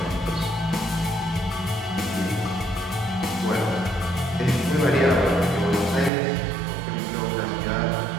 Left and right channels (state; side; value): drops out; left; at 6.1 s